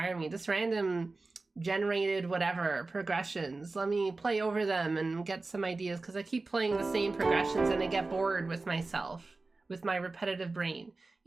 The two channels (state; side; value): quieter; left; 3.5 dB